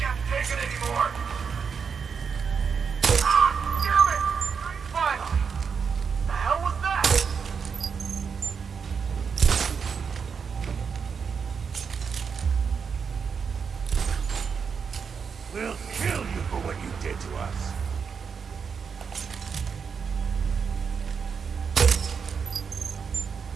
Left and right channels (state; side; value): quieter; left; 6.2 dB